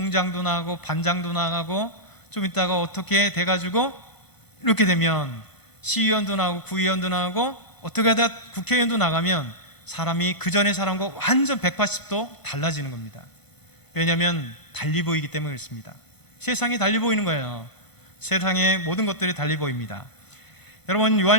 나가고 반장도 나가고 좀 있다가 어떻게 돼가지고 이렇게 되면 시의원도 나가고 구의원도 나가고 어떻게 하다 국회의원도 나가면 사람이 그 전의 사람과 완전 180도 달라지는 겁니다. 왜냐하면 달리 보이기 때문에 그렇습니다. 세상이 달리 보이는 거예요. 세상의 모든 것들이 달리 보입니다. 여러분,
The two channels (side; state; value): right; late; 1.5 ms